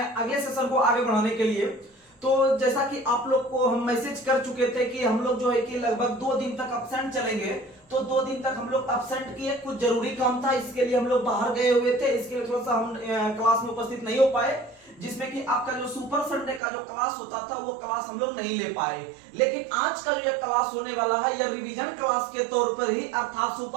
सेशन को आगे बढ़ाने के लिए। तो जैसा कि आप लोग को हम मैसेज कर चुके थे कि हम लोग जो है कि लगभग 2 दिन तक अब्सेंट चलेंगे, तो 2 दिन तक हम लोग अब्सेंट किए। कुछ जरूरी काम था, इसके लिए हम लोग बाहर गए हुए थे, इसके लिए थोड़ा सा हम क्लास में उपस्थित नहीं हो पाए, जिसमें कि आपका जो सुपर संडे का जो क्लास होता था वो क्लास हम लोग नहीं ले पाए। लेकिन आज का जो ये क्लास होने वाला है यह रिवीजन क्लास के तौर पर ही, अर्थात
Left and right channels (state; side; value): drops out; left; at 16.6 s